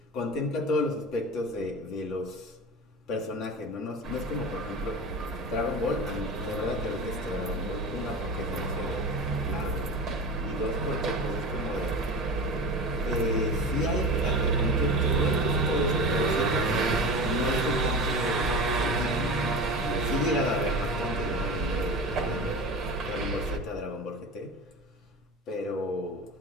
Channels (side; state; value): both; normal; correlation 0.30